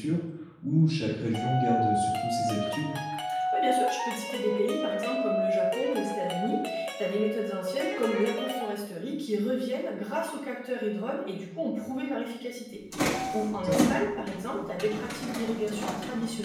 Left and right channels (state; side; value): identical; both; correlation 1.00